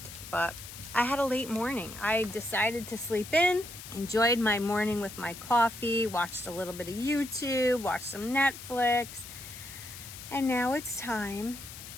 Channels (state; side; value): noise; left; hiss, 13 dB below the sound